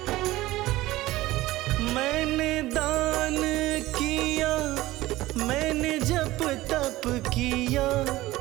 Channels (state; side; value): quieter; left; 17.5 dB